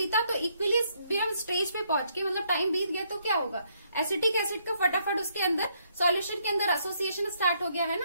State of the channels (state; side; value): inverted; both; correlation -0.72